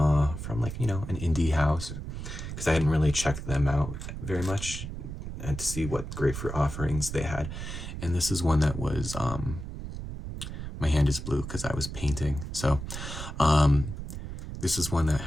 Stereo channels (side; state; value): right; noise; rumble, 7 dB below the sound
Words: from like, an indie house, because I hadn't really checked them out very much and to see what grapefruit offerings they had. And this is one that was, my hand is blue because I was painting. So this is one that